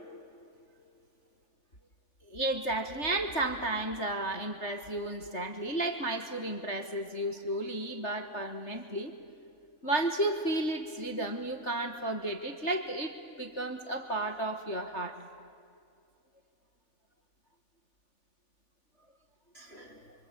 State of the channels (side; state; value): right; late; 3.3 ms